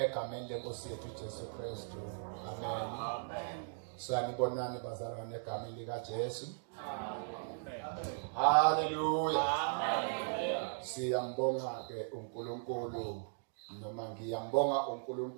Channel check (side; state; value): left; silent; digital silence